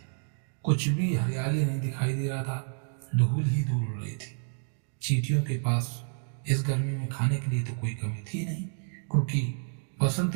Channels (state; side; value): silent; left; digital silence